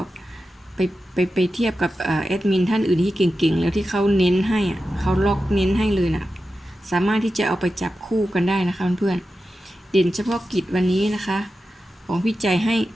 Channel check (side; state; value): both; normal; correlation 0.92